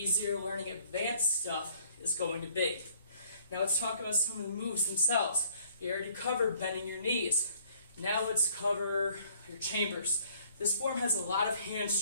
learning advanced stuff is going to be. Now let's talk about some of the moves themselves. You already covered bending your knees. Now let's cover your chambers. This form has a lot of hand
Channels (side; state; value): both; inverted; correlation -0.60